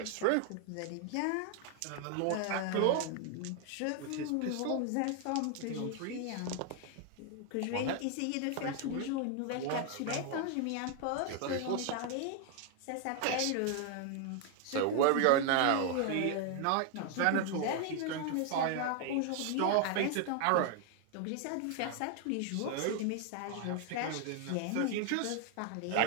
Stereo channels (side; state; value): both; different; correlation 0.00